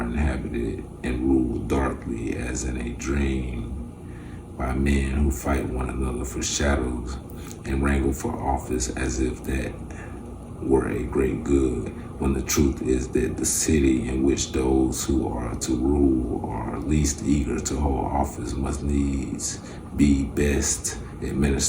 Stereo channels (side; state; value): both; identical; correlation 1.00